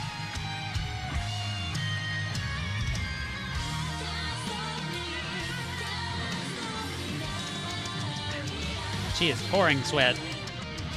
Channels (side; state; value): both; identical; correlation 1.00